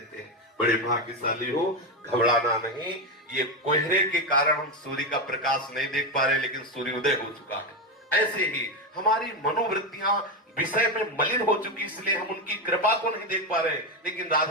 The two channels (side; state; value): both; normal; correlation 0.11